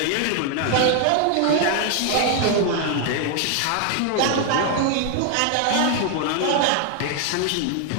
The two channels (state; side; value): different; both; correlation 0.00